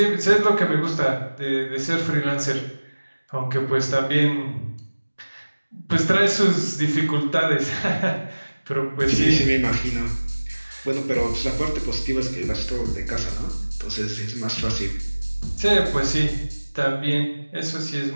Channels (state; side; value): inverted; both; correlation -1.00